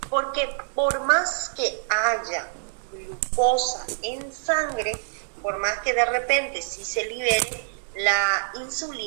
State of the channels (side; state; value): left; silent; digital silence